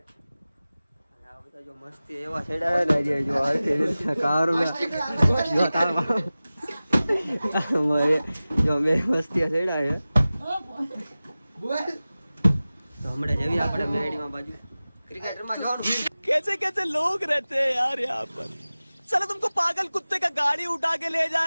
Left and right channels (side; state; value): both; inverted; correlation -0.97